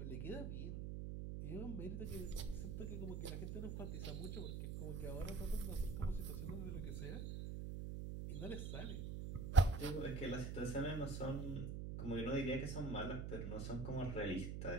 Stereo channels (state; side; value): noise; right; hum, 3 dB below the sound